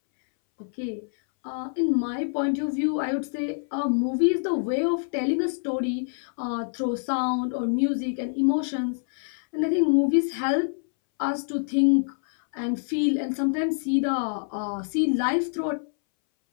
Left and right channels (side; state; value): right; silent; 61 dB below the other